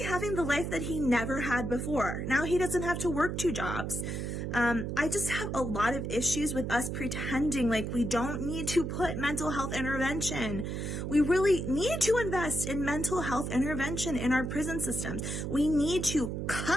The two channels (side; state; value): right; noise; hum, 3 dB below the sound